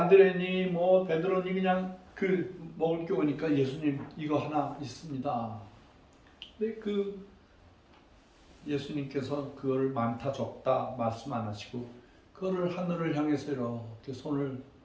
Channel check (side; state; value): both; identical; correlation 1.00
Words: 뭐 베드로니 그냥 먹을 게 오니까 예수님 이거 하나 있습니다. 근데 예수님께서 그거를 많다 적다 말씀 안 하시고 그거를 하늘을 향해서 이렇게 손을